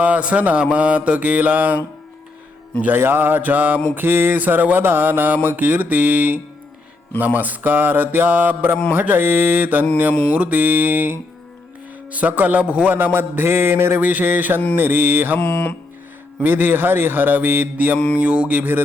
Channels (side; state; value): right; quieter; 3.2 dB